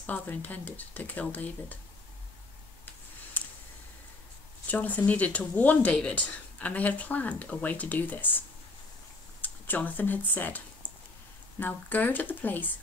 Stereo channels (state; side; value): quieter; right; 3.1 dB